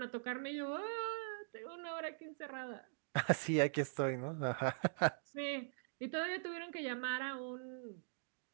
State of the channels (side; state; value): left; silent; digital silence